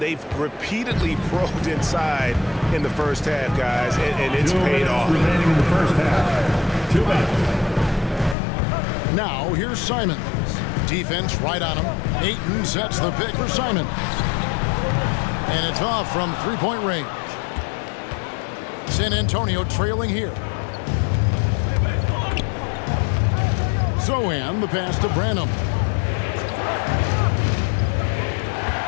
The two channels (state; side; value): drops out; right; at 8.3 s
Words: repeatedly probed inside in the first half, guys, and it's paid off. Remaining in the first half. 2 minutes. Now here's Simons. Defense right on him. Ayton sets the pick for Simons. And it's off from three-point range. San Antonio trailing here. Zohan, the pass to Branham.